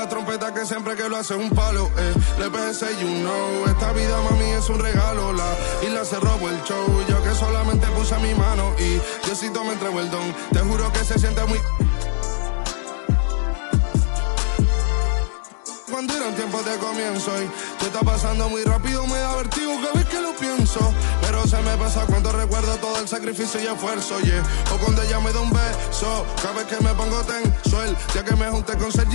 trompeta que siempre que lo hace es un palo. Le pensé, you know, esta vida mami es un regalo. La isla se robó el show, yo que solamente puse mi mano y Diosito me entregó el don. Te juro que se siente muy... Cuando eran tiempos de comienzo y tú estás pasando muy rápido, me da vertigo cada vez que lo pienso. Pero se me pasa cuando recuerdo todo el sacrificio y esfuerzo, yeah. O cuando ella me da un beso, cada vez que me pongo tenso. El día que me junté con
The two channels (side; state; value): right; silent; digital silence